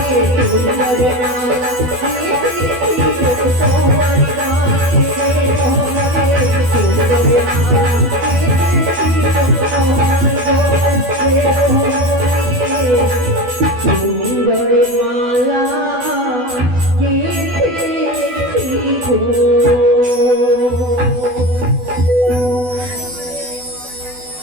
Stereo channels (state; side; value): late; left; 12 ms